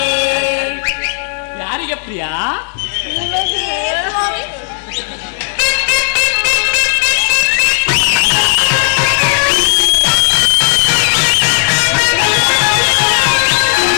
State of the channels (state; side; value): silent; right; digital silence